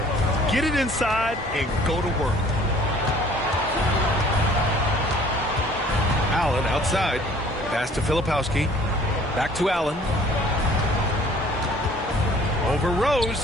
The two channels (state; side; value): normal; both; correlation 0.53